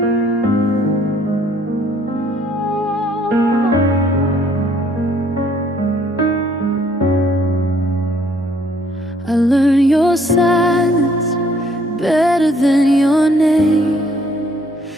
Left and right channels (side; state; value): both; normal; correlation 0.63